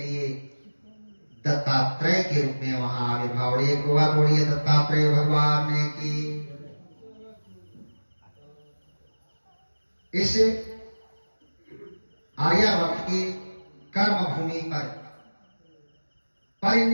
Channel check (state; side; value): inverted; both; correlation -1.00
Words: दत्तात्रेय के रूप में वहां आविर्भाव। बोलिए दत्तात्रेय भगवान ने की। इस आर्यावर्त की कर्म भूमि पर